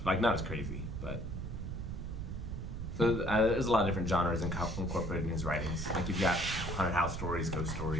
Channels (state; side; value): noise; right; rumble, 6 dB below the sound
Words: Like, not as crazy, but... So there's a lot of different genres incorporated in his writings. Like, you've got haunted house stories, ghost